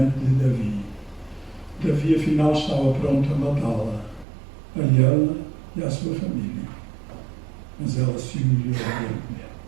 de Davi. Davi, afinal, estava pronto a matá-la, a ela e à sua família. Mas ela se humilhou diante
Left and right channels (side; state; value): left; drops out; at 4.2 s